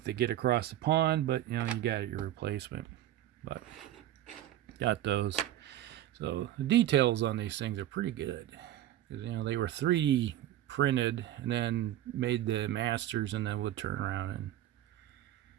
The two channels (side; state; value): left; quieter; 13.0 dB